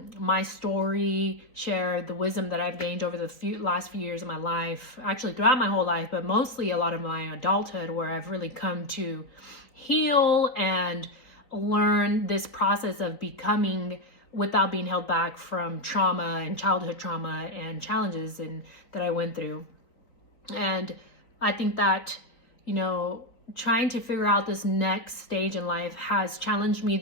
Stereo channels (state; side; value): late; right; 4.1 ms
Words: story, share the wisdom that I've gained over the last few years of my life, actually throughout my whole life, but mostly a lot of my adulthood, where I've really come to heal and learn this process of becoming without being held back from trauma and childhood trauma and challenges that I went through. And I think that, trying to figure out this next stage in life has challenged me